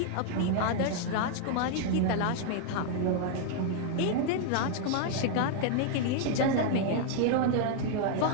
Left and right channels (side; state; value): both; different; correlation 0.00